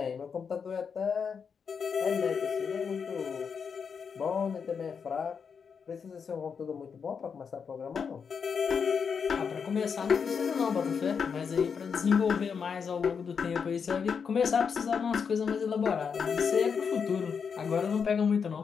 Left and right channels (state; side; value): quieter; right; 6.3 dB